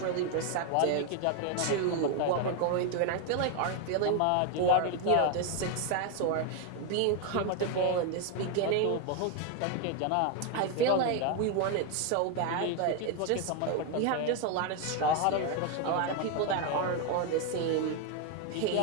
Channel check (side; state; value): both; different; correlation 0.01